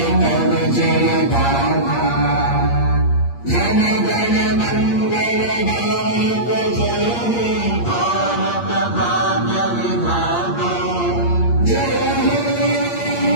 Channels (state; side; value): late; right; 8.6 ms